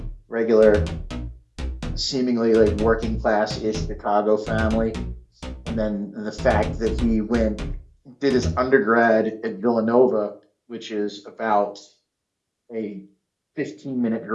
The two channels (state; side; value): identical; both; correlation 1.00